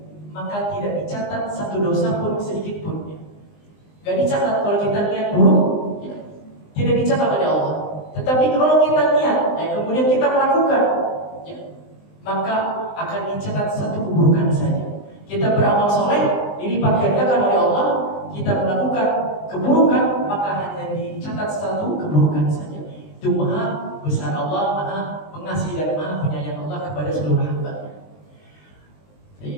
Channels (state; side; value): late; right; 20 ms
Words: maka tidak dicatat satu dosa pun sedikit pun. Gak dicatat kalau kita niat buruk, ya, tidak dicatat oleh Allah. Tetapi kalau kita niat, kemudian kita melakukan, ya, maka akan dicatat satu keburukan saja. Kita beramal soleh, dilipat gandakan oleh Allah. Kita melakukan keburukan, maka hanya dicatat satu keburukan saja. Itu maha besar Allah, maha pengasih dan maha penyayang Allah kepada seluruh hamba.